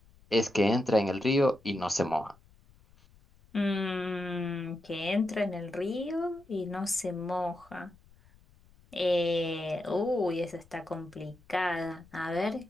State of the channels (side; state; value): left; noise; rumble, 28 dB below the sound